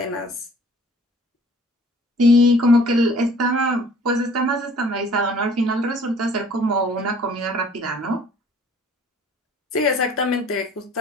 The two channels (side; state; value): both; normal; correlation 0.53